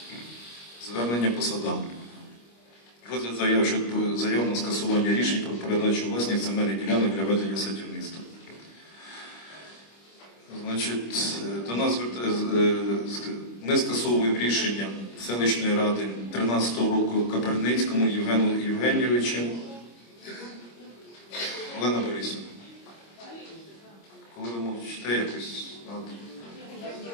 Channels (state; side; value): late; right; 25 ms